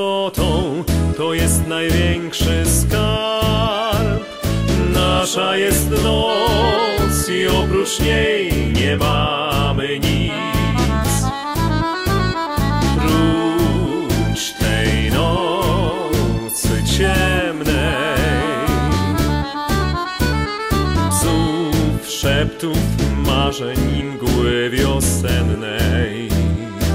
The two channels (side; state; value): both; identical; correlation 1.00